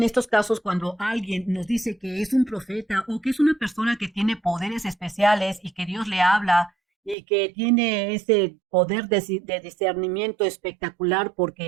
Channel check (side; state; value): left; drops out; at 7.2 s